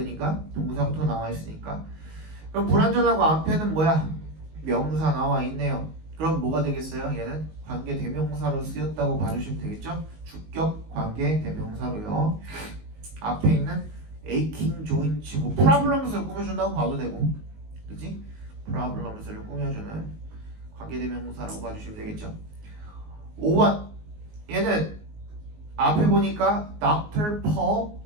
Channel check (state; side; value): late; left; 19 ms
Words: 동사부터 나와 있으니까. 그럼 불완전하고 앞에는 뭐야? 명사 나와 있네요. 그럼 뭐가 되겠어요? 얘는 관계 대명사로 쓰였다고 봐주시면 되겠죠? 주격 관계 대명사로요. 앞에 있는 aching joints 뭐 problems를 꾸며준다고 봐도 되고, 그치? problems를 꾸며주는 관계 대명사라고 봐주시면 되겠죠. 5번 얘는 앞에 보니까 Dr. Paul